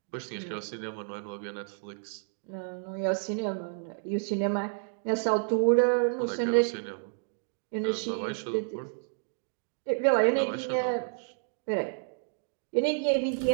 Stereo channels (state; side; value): silent; left; digital silence